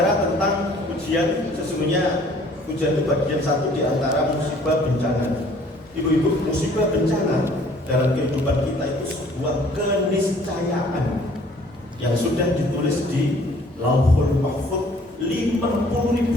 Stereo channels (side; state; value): both; normal; correlation 0.56